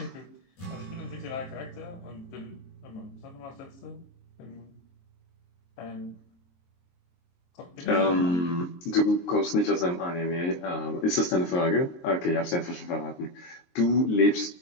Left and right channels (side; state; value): right; late; 23 ms